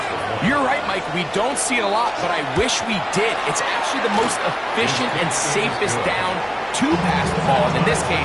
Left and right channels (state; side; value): identical; both; correlation 1.00